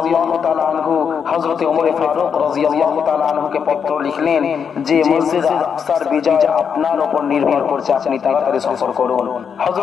তাআলা আনহু হযরত ওমর ফারুক রাদিয়াল্লাহু তাআলা আনহুকে পত্র লিখলেন যে মসজিদে আকসার বিজয় আপনার উপর নির্ভর করছে, আপনি তাড়াতাড়ি সফর করুন।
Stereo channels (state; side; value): quieter; right; 6.9 dB